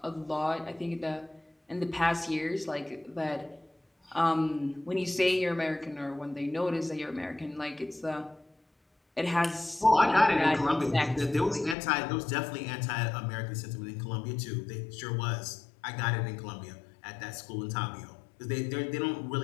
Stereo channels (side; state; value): right; drops out; at 11.8 s